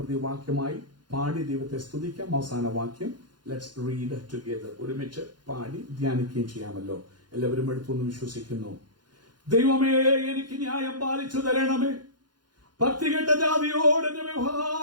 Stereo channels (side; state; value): left; late; 0.71 ms